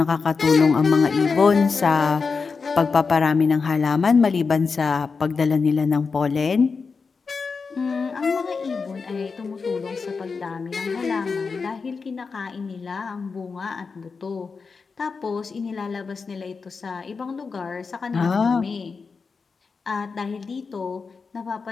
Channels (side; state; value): right; quieter; 4.9 dB